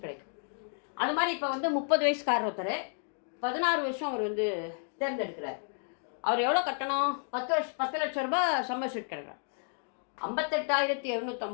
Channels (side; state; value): right; silent; 55 dB below the other